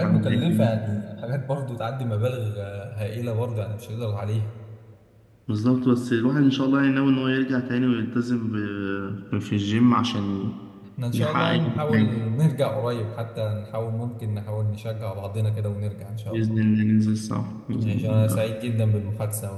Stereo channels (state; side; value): identical; both; correlation 1.00